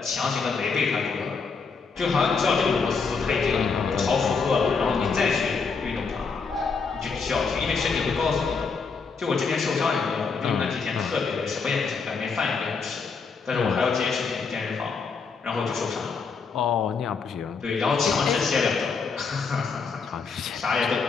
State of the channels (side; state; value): right; quieter; 5.1 dB